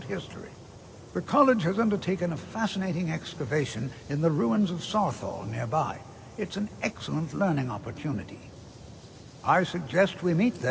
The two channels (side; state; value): both; identical; correlation 1.00